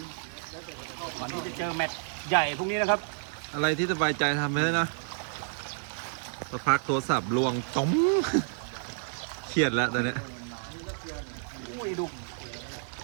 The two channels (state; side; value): silent; left; digital silence